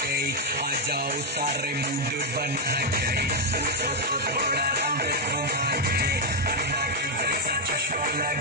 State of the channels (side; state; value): both; normal; correlation 0.01